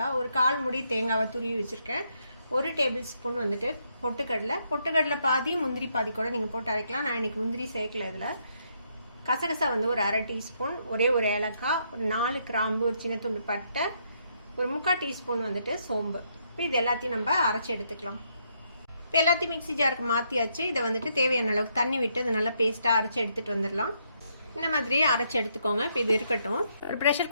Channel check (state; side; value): inverted; both; correlation -0.75